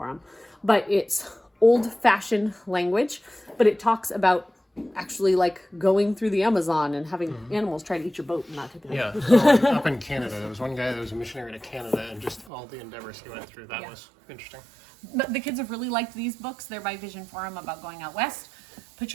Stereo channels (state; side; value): drops out; left; at 12.5 s